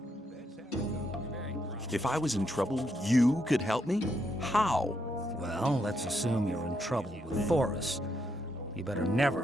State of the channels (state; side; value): normal; both; correlation 0.78